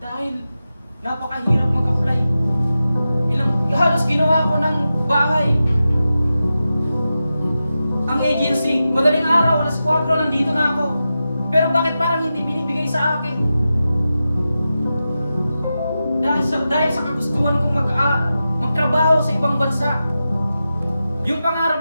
napakahirap mag-apply. Halos ginawa ko ng bahay. Ang agency, madaling araw, alas 4, nandito na ako. Pero bakit parang hindi binibigay sa akin? Dahil sa kagustuhan kong magtrabaho sa ibang bansa. Yung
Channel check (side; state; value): both; inverted; correlation -0.92